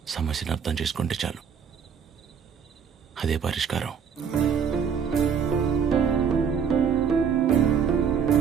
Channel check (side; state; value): left; quieter; 7.0 dB